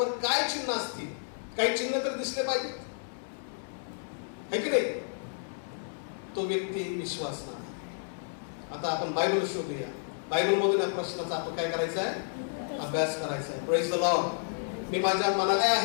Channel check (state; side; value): silent; right; digital silence